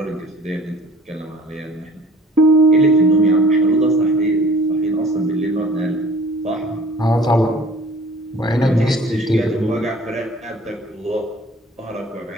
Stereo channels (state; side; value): normal; both; correlation 0.49